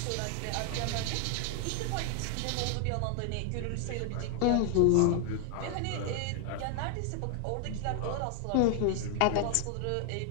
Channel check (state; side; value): different; both; correlation 0.00